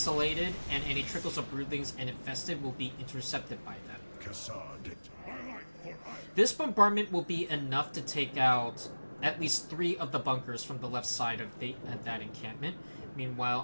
and any trickles of broodlings and infested will be intercepted by them. This bombardment will be enough to take out at least 3 of the bunkers from the left side of that encampment. Meanwhile,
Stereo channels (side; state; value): both; inverted; correlation -1.00